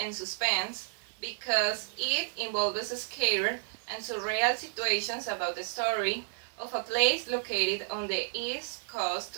and suspense because it involves scary and surreal situations about the story of a place located on the east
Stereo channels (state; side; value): silent; left; 57 dB below the other